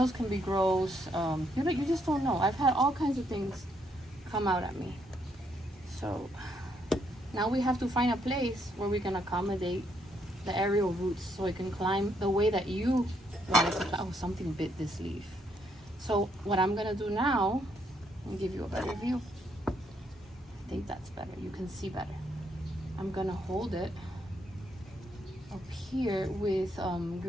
can be gross. You just don't know. I've had all kinds of things come out at me. So now we have to find a place where we can accommodate the aerial roots so it can climb the way that you want it to climb. Oh, something bit this leaf. So what I'm gonna do now, I'll give you a better view. I think that's better. You can see better. I'm gonna hold it up here with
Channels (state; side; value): normal; both; correlation 0.74